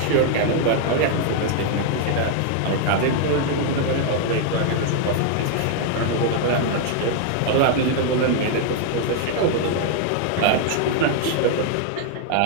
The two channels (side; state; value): both; different; correlation 0.00